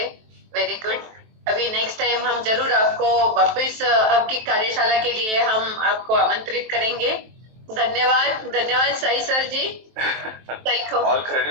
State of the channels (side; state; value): left; late; 23 ms